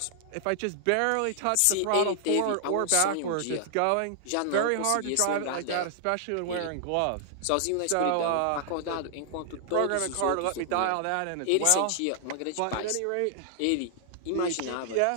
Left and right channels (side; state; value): both; different; correlation -0.01